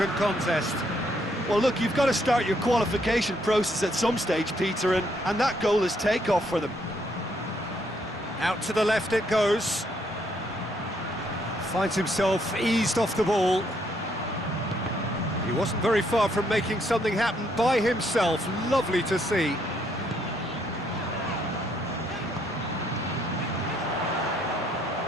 contest. Well, look, you've got to start your qualification process at some stage, Peter, and that goal is takeoff for them. Out to the left it goes. Finds himself eased off the ball. He wasn't very far from making something happen by himself. Lovely to see.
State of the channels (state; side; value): normal; both; correlation 0.71